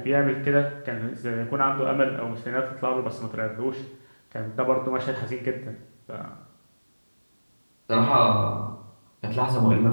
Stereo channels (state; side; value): inverted; both; correlation -1.00